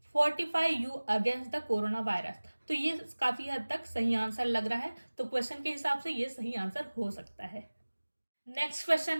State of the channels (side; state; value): both; inverted; correlation -1.00